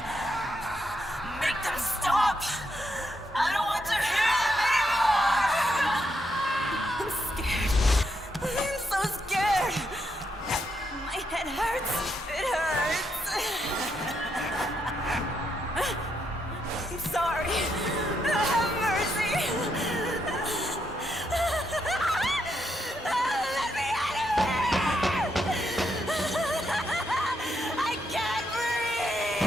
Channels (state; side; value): normal; both; correlation 0.79